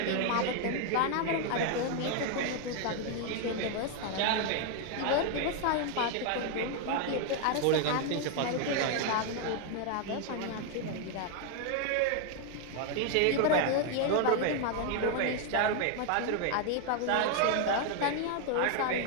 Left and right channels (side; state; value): both; different; correlation 0.00